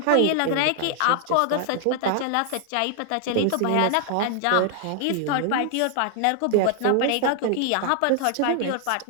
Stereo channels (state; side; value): different; both; correlation 0.00